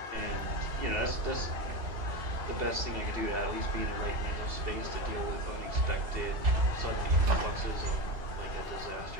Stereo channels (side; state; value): left; late; 2.8 ms